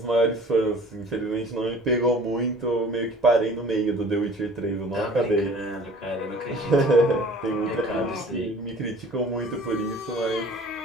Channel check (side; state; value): both; normal; correlation 0.48